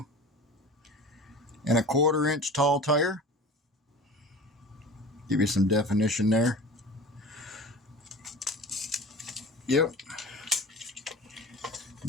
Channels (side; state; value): both; normal; correlation 0.37